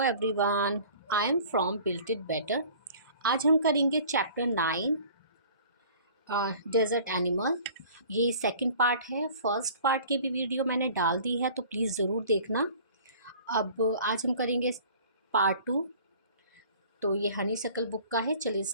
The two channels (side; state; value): both; inverted; correlation -0.48